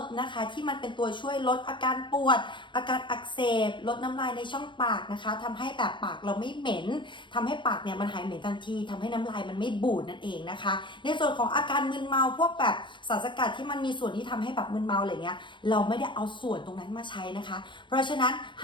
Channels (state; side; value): late; right; 0.23 ms